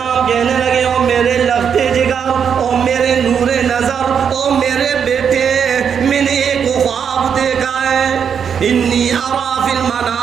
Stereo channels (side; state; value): left; quieter; 7.4 dB